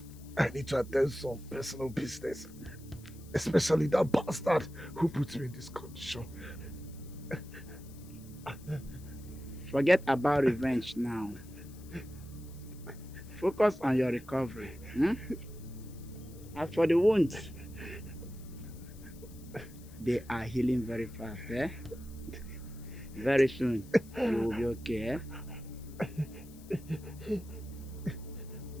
I need to attend some personal business. Especially that bastard who put me in this condition. Forget about revenge now. Focus on your recovery. As for the wounds, they are healing very fast. Very soon, you will be okay.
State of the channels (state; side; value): noise; left; hiss, 23 dB below the sound